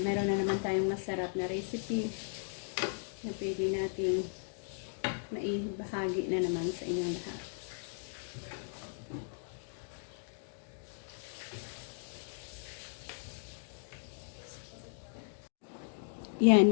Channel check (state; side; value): silent; right; digital silence